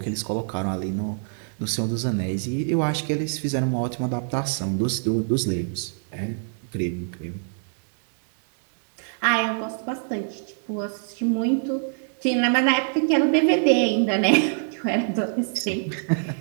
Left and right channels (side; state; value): left; silent; digital silence